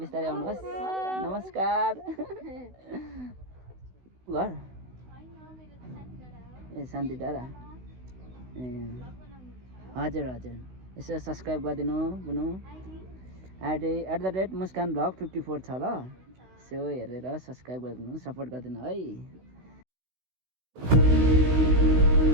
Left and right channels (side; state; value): left; late; 16 ms